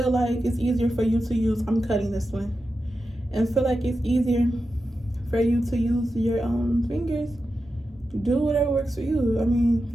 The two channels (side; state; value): both; normal; correlation 0.90